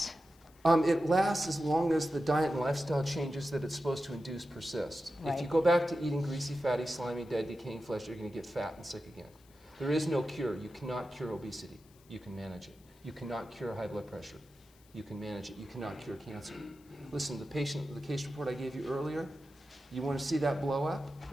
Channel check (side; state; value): left; noise; hiss, 29 dB below the sound